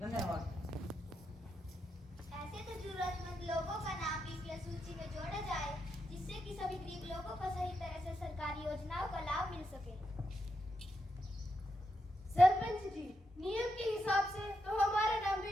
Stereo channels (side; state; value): both; normal; correlation 0.84